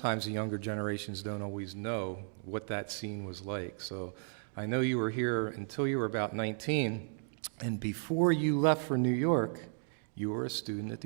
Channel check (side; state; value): left; silent; digital silence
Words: the younger generations don't always know what that scene was like. So I know you were here until you were about 19, and before you left for New York, you were a student at